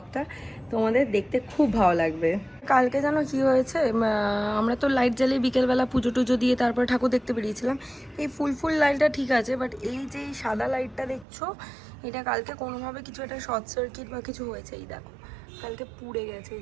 তোমাদের দেখতে খুব ভালো লাগবে। কালকে জানো কি হয়েছে, আমরা তো লাইট জ্বালিয়ে বিকেলবেলা পুজো টুজো দিয়ে তারপরে ঠাকুর দেখতে বেরিয়েছিলাম। এই ফুল লাইটটা ঠিক আছে, বাট এই যে সাদা লাইটটা দেখছো, এটা কালকে কোনোভাবে কিছু একটা শর্ট সার্কিট বা কিছু হয়েছে। এই দেখো, কালকে পুড়ে গেছে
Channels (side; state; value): left; drops out; at 11.2 s